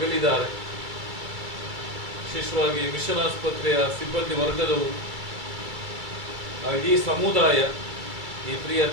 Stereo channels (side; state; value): left; late; 2.3 ms